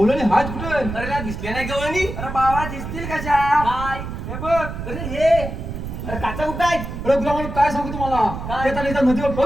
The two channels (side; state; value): right; noise; rumble, 7 dB below the sound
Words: गेला गवणी अरे बाबा दिसतील कशा काय हे बघ अरे हे अरे काचा कुठं आहे अरे तुला म्हणून काय सांगू तुम्हाला काय? ते त्याला इथं नदीवर